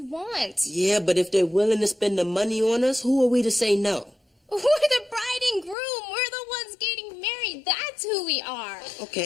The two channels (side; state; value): right; drops out; at 5.8 s